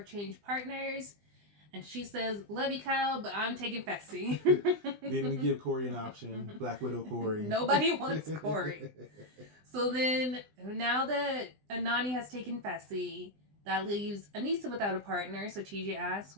change partners? And she says, love you, Kyle, but I'm taking Fessy. Didn't even give Corey an option. Black Widow Corey. Nobody wants Corey. So then, now that Nani has taken Fessy, that leaves Anissa without a partner. So TJ asks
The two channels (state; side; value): late; left; 20 ms